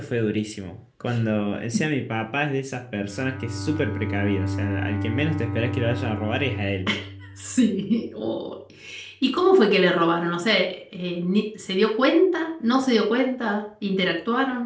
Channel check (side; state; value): both; identical; correlation 1.00